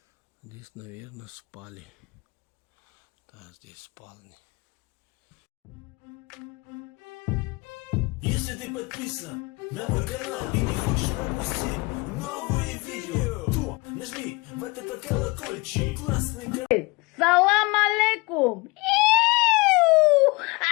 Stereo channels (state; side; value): quieter; right; 25.8 dB